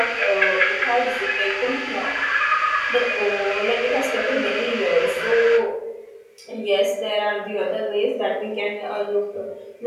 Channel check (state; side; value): identical; both; correlation 1.00